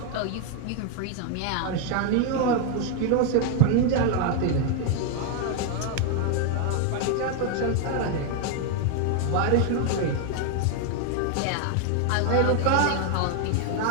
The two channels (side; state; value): both; different; correlation 0.01